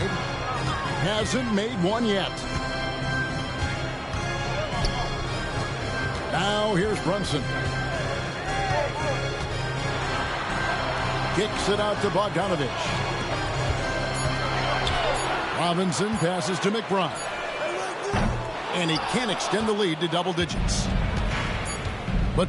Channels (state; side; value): identical; both; correlation 1.00